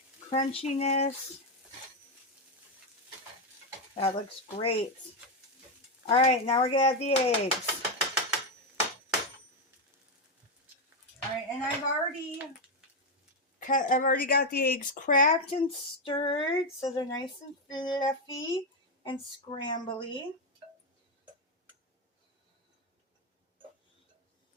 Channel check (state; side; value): normal; both; correlation 0.06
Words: crunchiness. That looks great. All right, now we're gonna add the eggs. All right, and I've already got the eggs cracked and stirred, so they're nice and fluffy and scrambly.